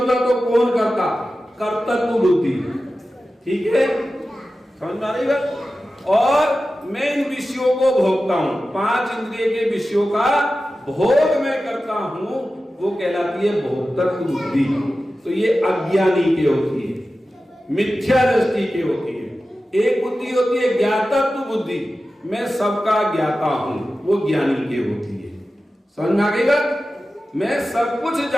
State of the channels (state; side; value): normal; both; correlation 0.94